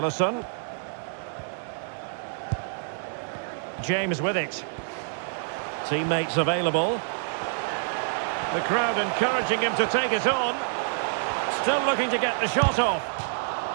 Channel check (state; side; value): silent; left; digital silence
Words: James with it. Teammates available. The crowd encouraging him to take it on. Still looking to get the shot off.